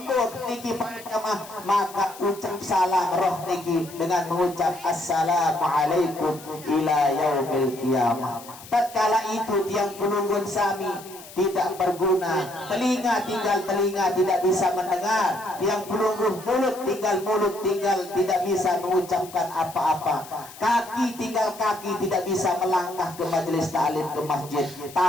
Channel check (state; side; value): noise; left; hiss, 18 dB below the sound